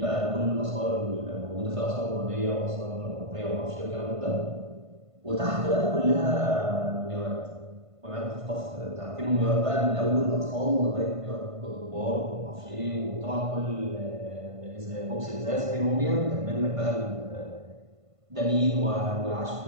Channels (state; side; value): late; left; 1.5 ms